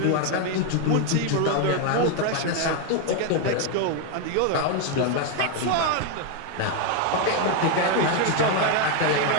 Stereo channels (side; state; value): both; different; correlation 0.01